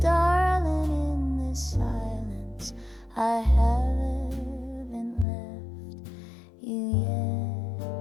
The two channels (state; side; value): drops out; right; at 5.2 s